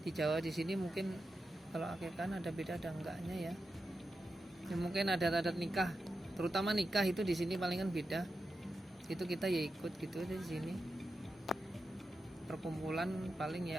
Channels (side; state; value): both; normal; correlation 0.89